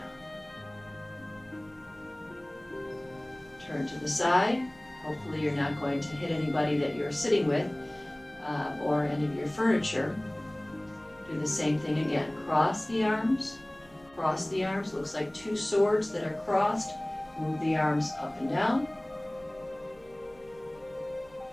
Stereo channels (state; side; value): noise; right; hum, 27 dB below the sound